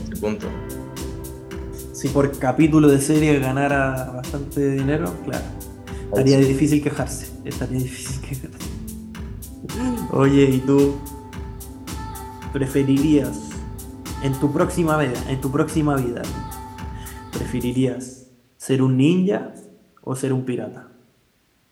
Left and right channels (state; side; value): identical; both; correlation 1.00